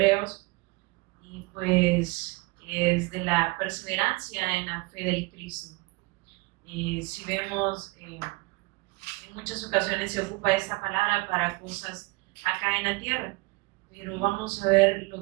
y pues es de la perseverancia en la fe del Cristo. Si vemos, en muchas ocasiones se ocupa esta palabra para cosas acá en la tierra, pero vamos a ver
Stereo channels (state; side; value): quieter; left; 25.3 dB